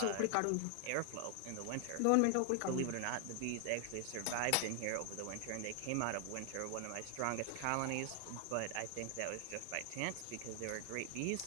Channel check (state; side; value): different; both; correlation 0.00